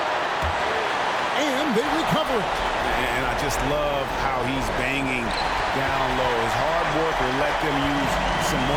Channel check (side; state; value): both; identical; correlation 1.00